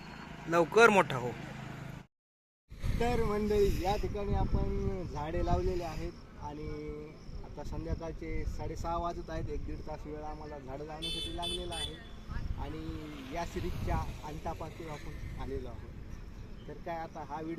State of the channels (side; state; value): both; identical; correlation 1.00